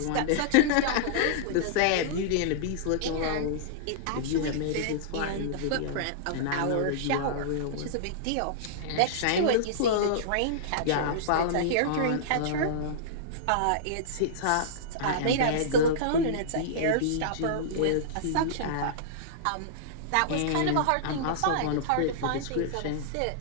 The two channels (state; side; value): different; both; correlation -0.02